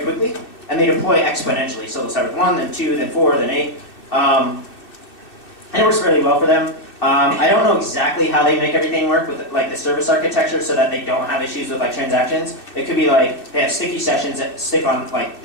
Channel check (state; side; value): late; right; 2.6 ms